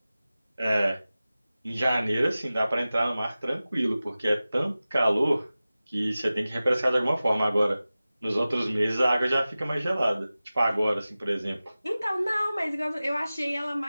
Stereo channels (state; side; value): inverted; both; correlation -0.96